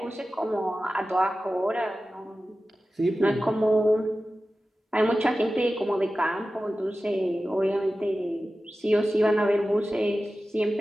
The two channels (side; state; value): both; normal; correlation 0.95